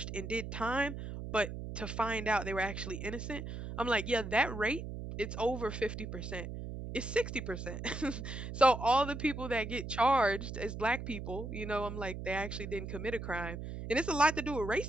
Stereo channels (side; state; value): right; noise; hum, 7 dB below the sound